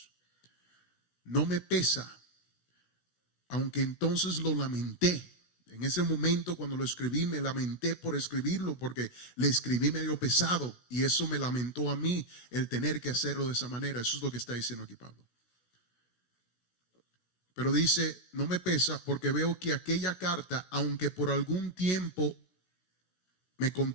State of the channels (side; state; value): right; late; 16 ms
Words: no me pesa, aunque entonces lo lamenté. En ese momento cuando lo escribí me lamenté por escribirlo, porque le escribí medio pesado y eso me lamentó a mí el tener que hacerlo de esa manera. Eso es lo que está diciendo aquí Pablo. Pero dice, no me pesa porque veo que aquella carta, aunque por algún tiempo me